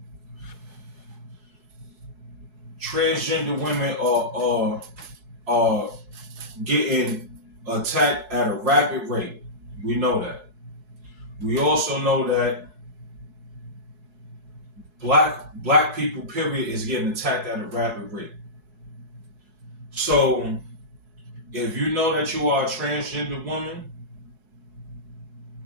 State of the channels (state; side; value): late; left; 4.7 ms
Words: transgender women are getting attacked at a rapid rate. We know that. We also know that black people, period, is getting attacked at a rapid rate. So, if you know that you are a transgender woman